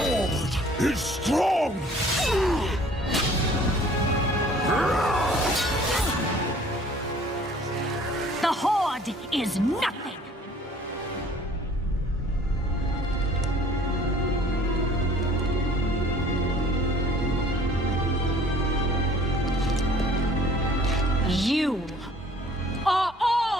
is strong. The Horde is nothing! You are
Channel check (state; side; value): normal; both; correlation 0.53